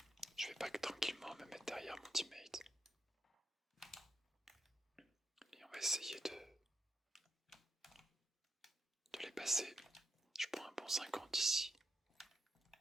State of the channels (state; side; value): normal; both; correlation 0.82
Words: Je vais back tranquillement me mettre derrière mon teammate. Et on va essayer de les passer. Je prends un bon 50 ici.